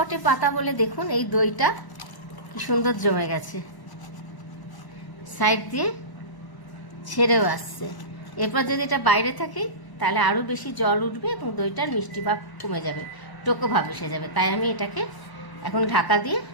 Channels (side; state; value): right; late; 1.0 ms